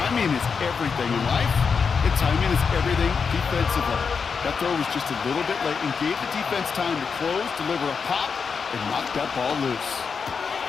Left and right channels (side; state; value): right; quieter; 5.7 dB